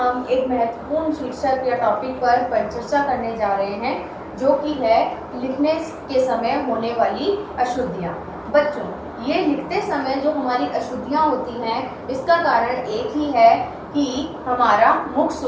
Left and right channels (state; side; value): identical; both; correlation 1.00